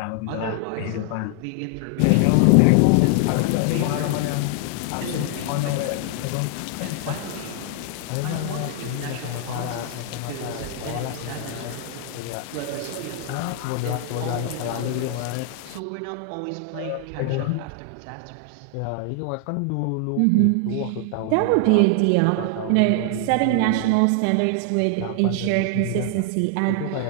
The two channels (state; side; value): different; both; correlation 0.00